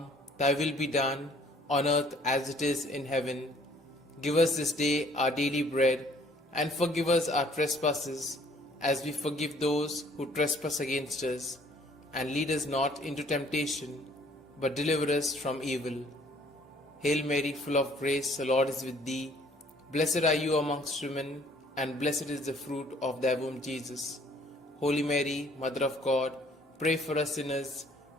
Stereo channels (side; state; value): both; normal; correlation 0.59